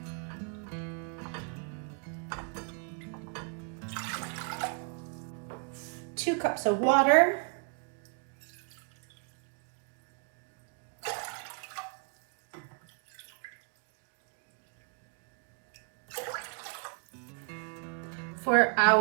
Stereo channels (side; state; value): left; quieter; 38.1 dB